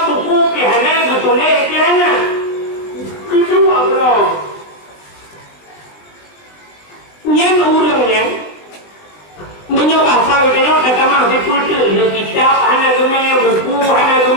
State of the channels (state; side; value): late; right; 20 ms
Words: Ditulis ke mana? Kedua bro. Yang urangnya menyoba saya tengok datang masih pultu dia kitab hana gemai buku hana